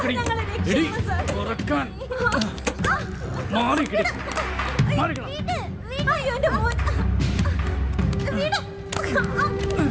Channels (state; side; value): identical; both; correlation 1.00